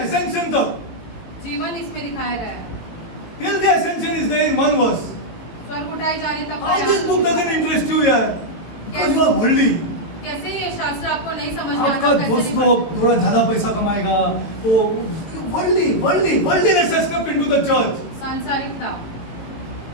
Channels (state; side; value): late; right; 18 ms